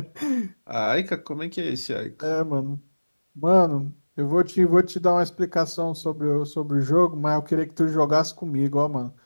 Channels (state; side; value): inverted; both; correlation -1.00